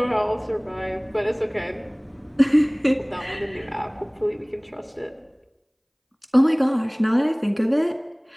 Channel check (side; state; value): both; identical; correlation 1.00